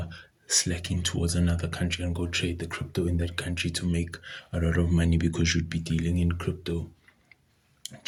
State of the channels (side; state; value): both; identical; correlation 1.00